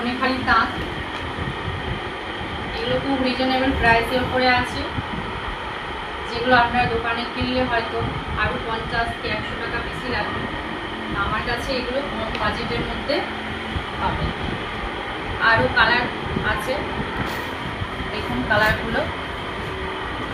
তাঁত। এগুলো খুব রিজনেবল প্রাইসের উপরে আছে, যেগুলো আপনারা দোকানে কিনলে হয়তো আরও 50 কি 100 টাকা বেশি লাগবে। আমার কাছে এগুলো কম বাজেটের মধ্যে পাবেন। আরও কালার আছে, দেখুন কালারগুলো।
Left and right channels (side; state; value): both; identical; correlation 1.00